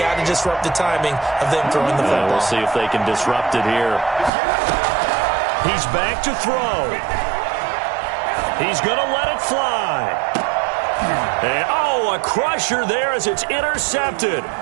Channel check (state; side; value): drops out; left; at 4.3 s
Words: to disrupt the timing of them throwing the football. We'll see if they can disrupt it here. He's back to throw. He's going to let it fly. And, a crusher there as it's intercepted.